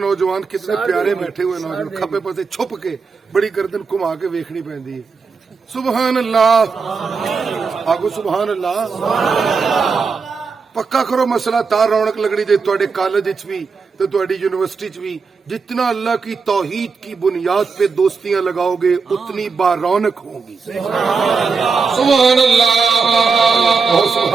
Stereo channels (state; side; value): quieter; left; 5.0 dB